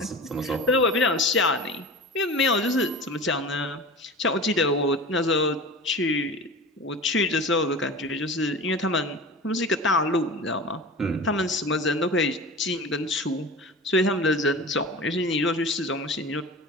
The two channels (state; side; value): normal; both; correlation 0.34